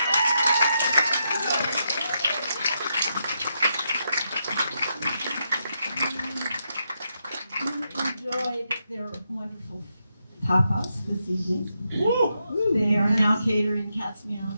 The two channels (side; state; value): both; inverted; correlation -0.83